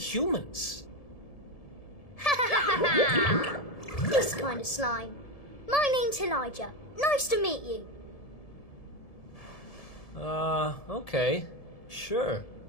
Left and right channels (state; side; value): late; right; 1.7 ms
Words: This kind of slime. My name's Elijah. Nice to meet you. Okay. Sure.